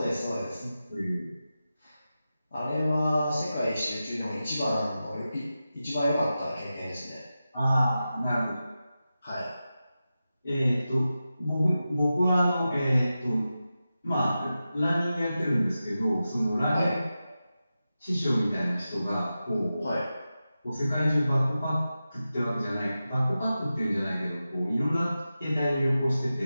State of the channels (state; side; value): inverted; both; correlation -0.92